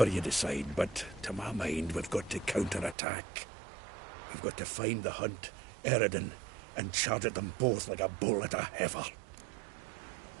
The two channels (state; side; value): drops out; left; at 3.0 s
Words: you decide, but to my mind, we've got to counterattack. We've got to find the Hunt, Eredin, and charge at them both like a bull at a heifer.